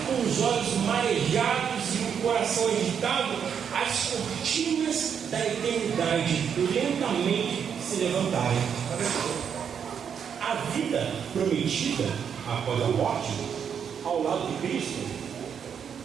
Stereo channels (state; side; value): quieter; left; 7.6 dB